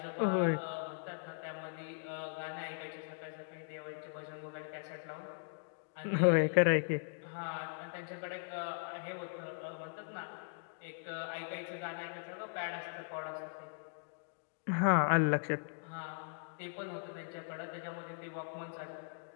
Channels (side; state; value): right; silent; digital silence